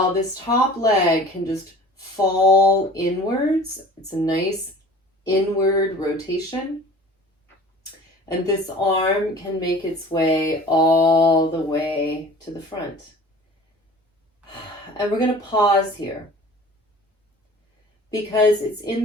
this top leg can just fall inwards. It's a nice inward rotation. And this arm can make its way all the way to the front. And we're going to pause here, because it's in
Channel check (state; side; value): normal; both; correlation 0.44